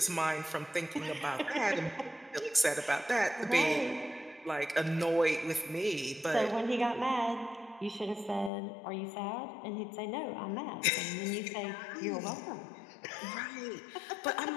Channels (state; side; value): drops out; right; at 8.5 s